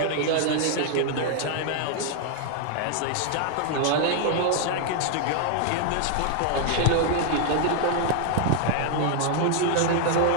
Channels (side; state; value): both; different; correlation 0.00